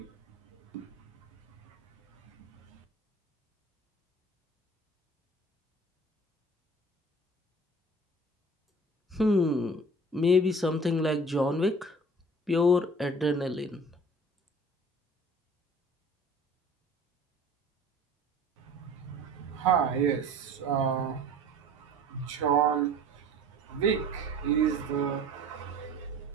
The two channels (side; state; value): both; normal; correlation 0.46